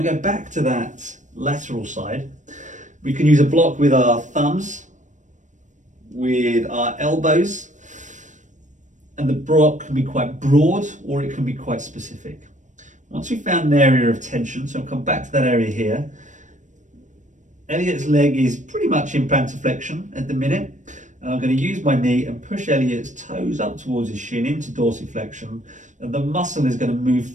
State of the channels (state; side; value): late; left; 0.36 ms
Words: to go back to that lateral side. We can use a block with our thumbs, with our elbows, and the block can be quite broad or it can be quite specific. Once we've found an area of tension, so I'll come back to that area here. Elliot's leg is pretty much in plantar flexion at the minute. And I'm going to use my knee and push Elliot's toes up towards his shin into dorsiflexion. And the muscle is going to move